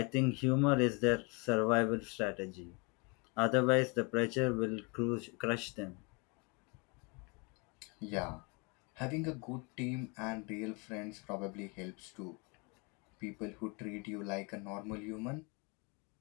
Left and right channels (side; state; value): right; quieter; 31.1 dB